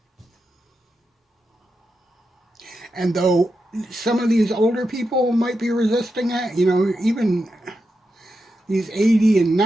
And though some of these older people might be resisting it, even These 80 and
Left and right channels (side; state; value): both; normal; correlation 0.88